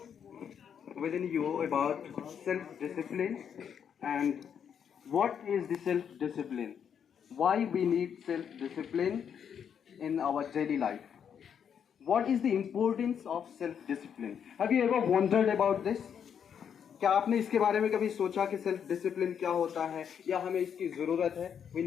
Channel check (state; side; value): quieter; right; 7.9 dB